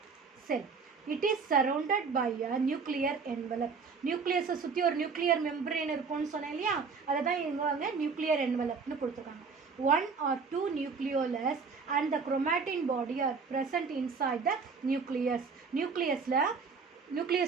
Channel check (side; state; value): left; quieter; 5.1 dB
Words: It is surrounded by a nuclear envelope. நியூக்ளியஸை சுற்றி ஒரு நியூக்ளியர் மெம்பரேன் இருக்கும்னு சொன்னேன் இல்லையா, அதை தான் இவங்க நியூக்ளியர் என்வலப்னு கொடுத்துருக்காங்க. 1 or 2 nucleolus and the chromatin body are present inside the nucleus.